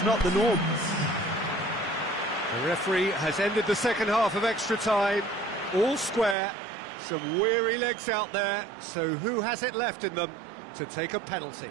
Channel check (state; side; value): drops out; left; at 6.4 s